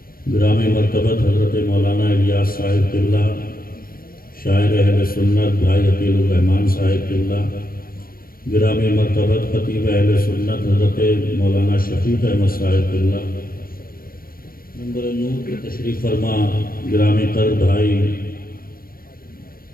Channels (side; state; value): right; late; 0.42 ms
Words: گرامی مرتبت حضرت مولانا الیاس صاحب قبلہ، شاعر اہل سنت بھائی عقیل الرحمان صاحب قبلہ، گرامی مرتبت خطیب اہل سنت حضرت مولانا شفیق احمد صاحب قبلہ، منبر نور کے تشریف فرما گرامی تر بھائی